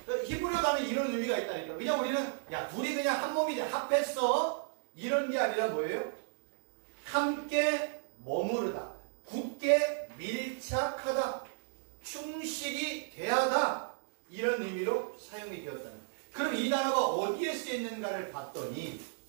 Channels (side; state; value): left; silent; 55 dB below the other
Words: 히브리어 단어에 이런 의미가 있다니까. 그냥 우리는 야 둘이 그냥 한 몸이 돼 합했어 이런 게 아니라 뭐예요? 함께 머무르다, 굳게 밀착하다, 충실히 대하다, 이런 의미로 사용이 되었다는 거예요. 그럼 이 단어가 어디에 쓰였는가를 봤더니